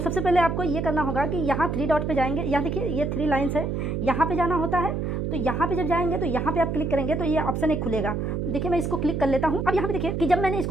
पहले आपको ये करना होगा कि यहाँ 3 डॉट पे जाएंगे। यहाँ देखिए ये 3 लाइन्स है, यहाँ पे जाना होता है। तो यहाँ पे जब जाएंगे तो यहाँ पे आप क्लिक करेंगे तो ये ऑप्शन एक खुलेगा। देखिए मैं इसको क्लिक कर लेता हूँ। अब यहाँ पे देखिए कि जब मैंने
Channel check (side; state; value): right; noise; hum, 1 dB below the sound